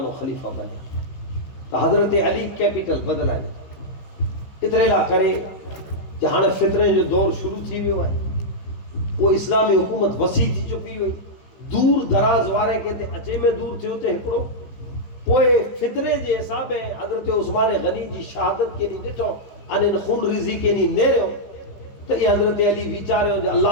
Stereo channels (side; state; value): right; late; 15 ms